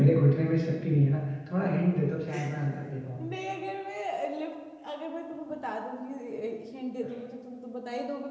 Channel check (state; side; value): identical; both; correlation 1.00